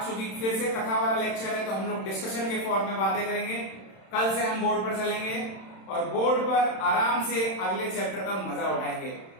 चूंकि फिर से कथा वाला लेक्चर है तो हम लोग डिस्कशन के फॉर्म में बातें करेंगे। कल से हम बोर्ड पर चलेंगे और बोर्ड पर आराम से अगले चैप्टर का मजा उठाएंगे।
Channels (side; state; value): right; late; 31 ms